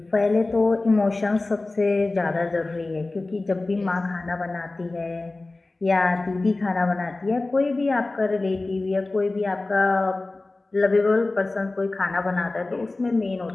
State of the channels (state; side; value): quieter; right; 3.1 dB